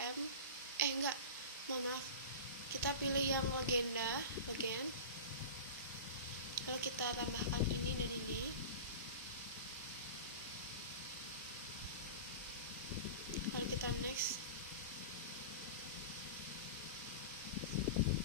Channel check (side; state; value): both; inverted; correlation -0.31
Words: Maaf, kita pilih yang legend, lalu kita tambahkan ini dan ini. Lalu kita next.